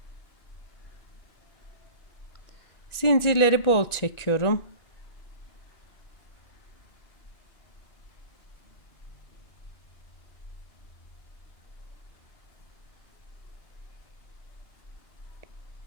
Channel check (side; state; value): right; late; 1.9 ms